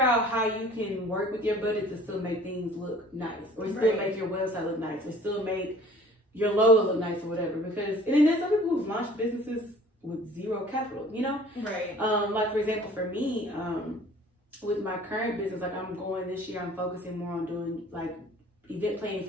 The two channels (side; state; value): both; normal; correlation 0.49